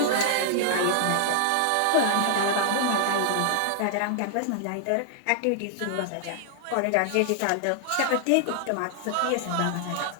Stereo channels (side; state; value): both; different; correlation 0.00